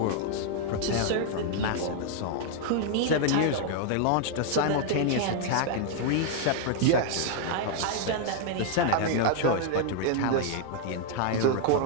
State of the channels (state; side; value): different; both; correlation 0.00